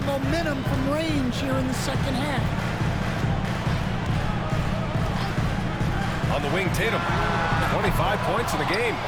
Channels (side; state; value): both; identical; correlation 1.00